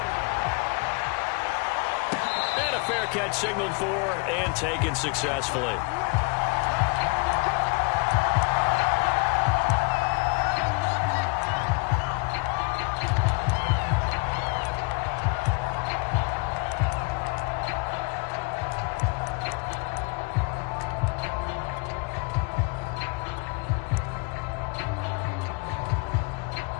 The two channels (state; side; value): quieter; right; 30.5 dB